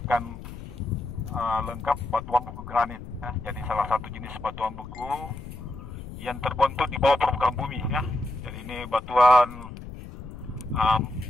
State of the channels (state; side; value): noise; left; rumble, 12 dB below the sound